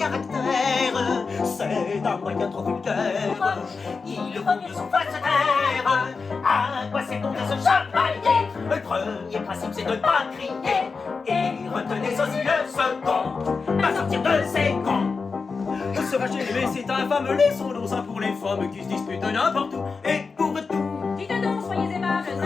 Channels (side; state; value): right; quieter; 4.7 dB